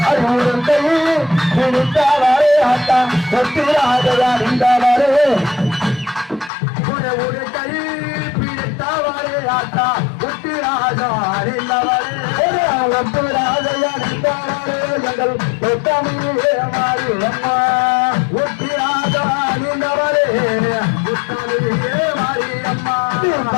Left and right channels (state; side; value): drops out; right; at 6.5 s